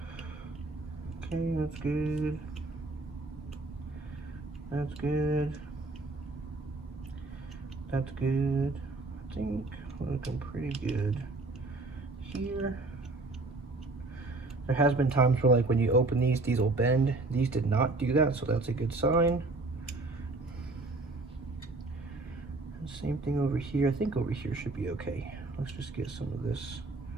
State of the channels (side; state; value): left; quieter; 3.2 dB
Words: Okay, that's good. That's good. That's good. I think we're looking pretty good here. There has been times where like when you open these will bend. These did not do that, so that's a good sign. Same thing over here. I think over here should be okay. Let's just get some of this.